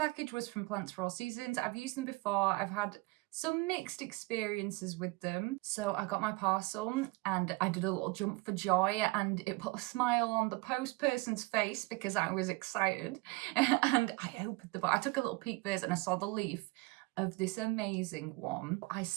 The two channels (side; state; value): left; quieter; 23.8 dB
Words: was from Plants for All Seasons. I've used them before. I've had some mixed experiences with them. So I got my parcel and I did a little jump for joy, and it put a smile on the post person's face because I was excited. And I opened the box. I took a little peek first and I saw the leaf of this amazing one. I